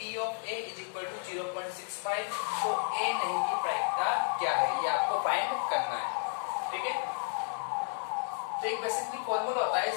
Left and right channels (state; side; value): silent; right; digital silence